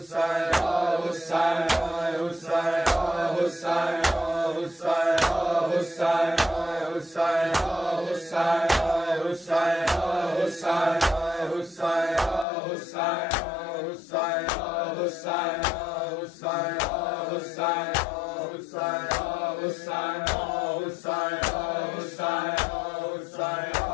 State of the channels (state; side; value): drops out; right; at 12.5 s